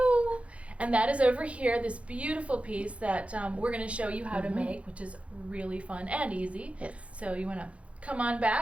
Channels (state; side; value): late; left; 0.063 ms